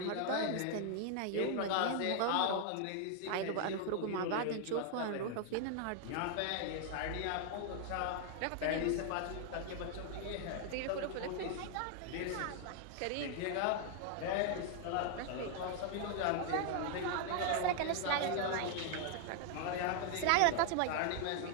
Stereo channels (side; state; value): both; different; correlation 0.00